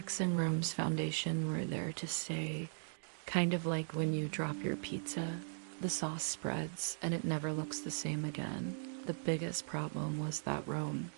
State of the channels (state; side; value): silent; left; digital silence